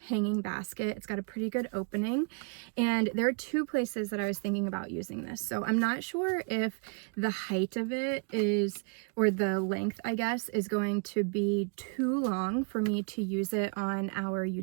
hanging basket. It's got a pretty good opening, and there are 2 places that I was thinking about using this. So I'm not sure if the height of it is, or the length I guess, is going to be too long for me to use it on our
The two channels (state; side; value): quieter; left; 36.3 dB